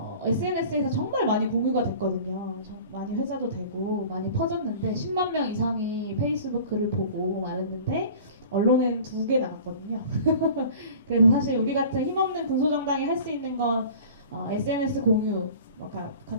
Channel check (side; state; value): both; inverted; correlation -0.43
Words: SNS에서 정말 많이 공유가 됐거든요. 많이 회자도 되고 많이 퍼졌는데 10만 명 이상이 페이스북 글을 보고 말했는데 언론에는 2개 나갔거든요. 그래서 사실 우리 같은 힘없는 군소정당이 할 수 있는 건 SNS 공유,